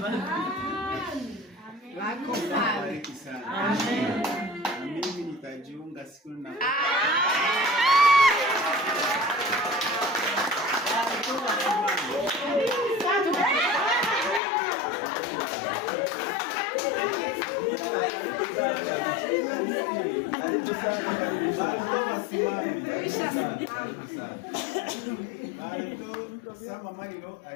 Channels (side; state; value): right; drops out; at 14.4 s